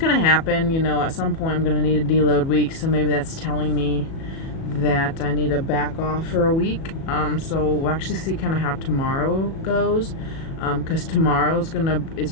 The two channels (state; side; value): late; right; 37 ms